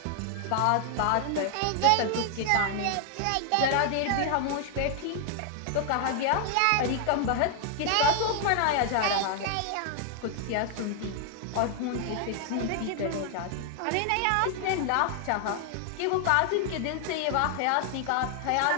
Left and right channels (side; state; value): both; different; correlation 0.00